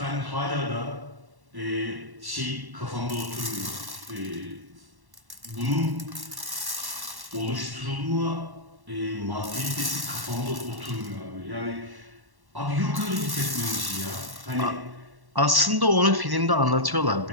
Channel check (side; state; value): left; late; 1.1 ms